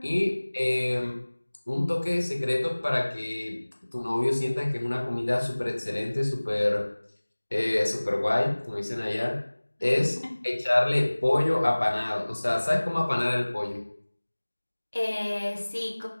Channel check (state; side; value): inverted; both; correlation -1.00